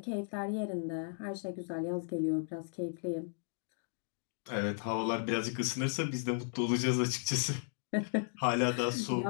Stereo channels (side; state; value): right; silent; digital silence